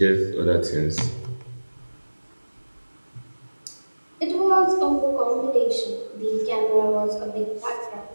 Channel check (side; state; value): both; inverted; correlation -1.00